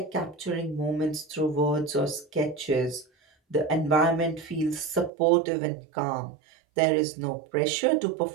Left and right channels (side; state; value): left; drops out; at 5.1 s